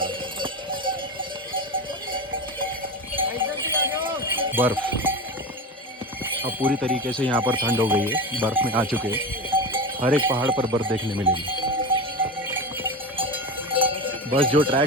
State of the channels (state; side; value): normal; both; correlation 0.23